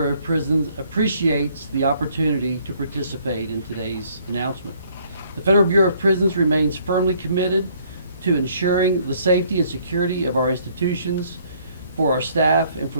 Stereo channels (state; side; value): inverted; both; correlation -0.63